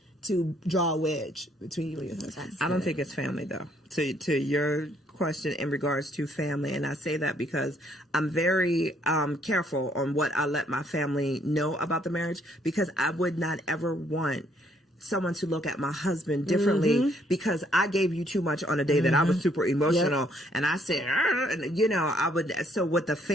to draw a wedge between you and your husband. I don't think it's family though. To your question in regards to family, and I say that because I'm very careful on what I let my family know about the marriage because I would not ever want someone to look at my husband differently because I gave you too much on a day that I was super emotional and I said, and you know, I would. So with the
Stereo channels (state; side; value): normal; both; correlation 0.67